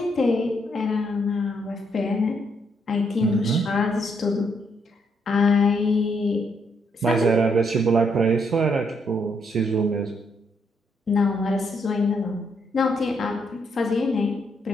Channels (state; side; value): normal; both; correlation 0.74